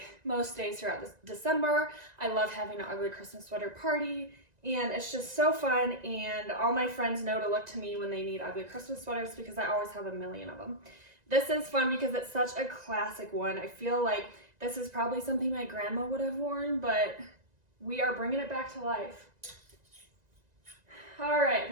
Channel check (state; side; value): late; left; 1.9 ms